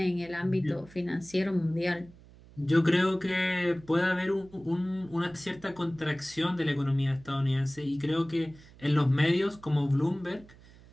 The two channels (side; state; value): right; noise; hum, 23 dB below the sound